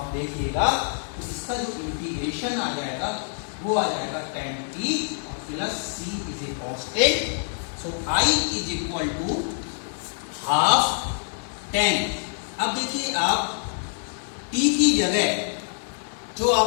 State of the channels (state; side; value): silent; right; digital silence